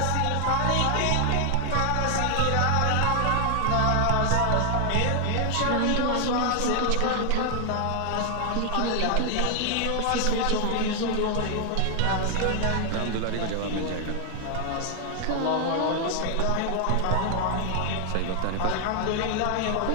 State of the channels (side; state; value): both; different; correlation 0.00